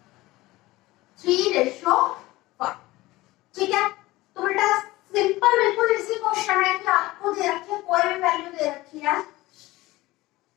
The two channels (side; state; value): right; quieter; 19.0 dB